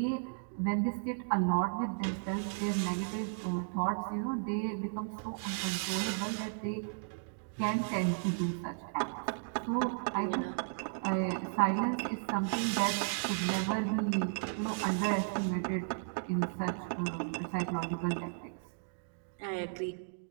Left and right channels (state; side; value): silent; left; digital silence